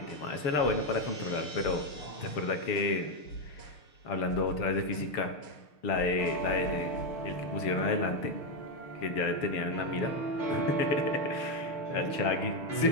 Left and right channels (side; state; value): right; late; 6.6 ms